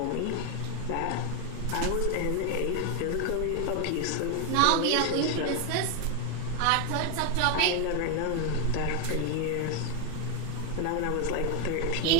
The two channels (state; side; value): different; both; correlation 0.01